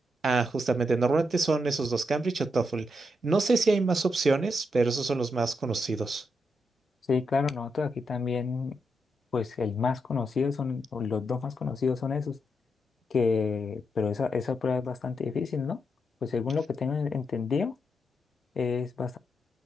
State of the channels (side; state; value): both; normal; correlation 0.82